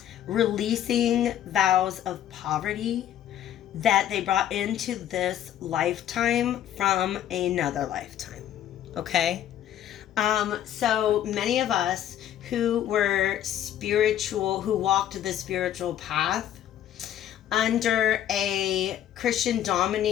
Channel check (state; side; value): quieter; right; 11.2 dB